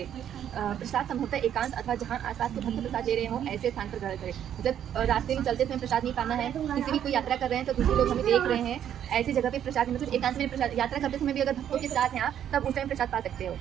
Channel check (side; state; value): left; quieter; 9.9 dB